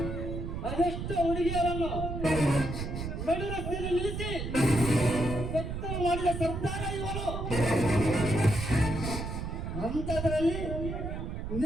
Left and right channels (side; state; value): right; noise; rumble, 4 dB below the sound